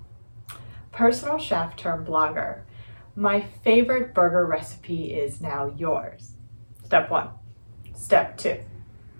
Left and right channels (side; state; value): both; inverted; correlation -1.00